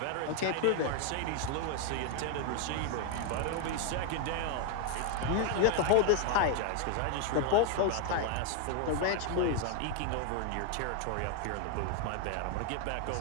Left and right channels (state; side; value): different; both; correlation 0.00